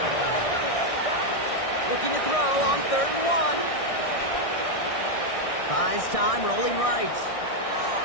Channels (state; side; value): late; right; 1.6 ms